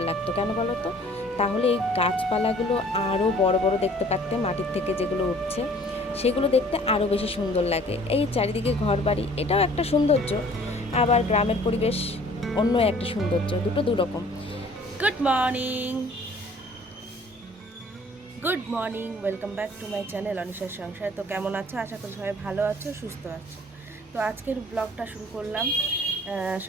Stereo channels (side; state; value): both; normal; correlation 0.53